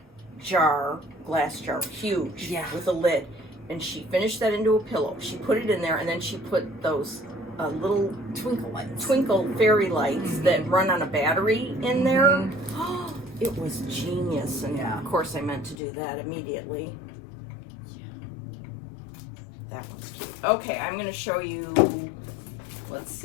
jar, glass jar, huge, with a lid. And she finished that into a pillow. She put it in there, and then she put those little twinkle fairy lights that run on a battery in there. It was genius. And of course I meant to do that immediately. That one's cute. Okay, I'm going to show you, let's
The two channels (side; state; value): right; drops out; at 15.8 s